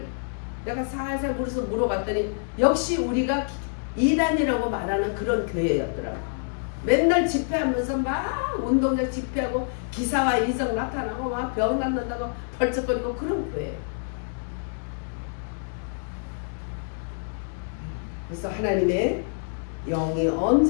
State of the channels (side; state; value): right; silent; digital silence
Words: 내가 살살 물어봤더니 역시 우리가 이단이라고 말하는 그런 교회였더라고. 맨날 집회하면서 막 운동장 집회하고 기사와 이성 나타나고 막 병 낫는다고 벌쩍거리고 그런 교회예요. 그래서 하나님의 영이